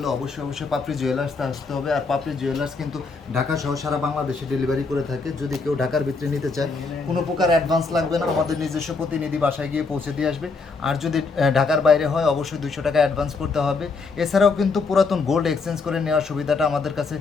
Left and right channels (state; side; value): quieter; right; 4.3 dB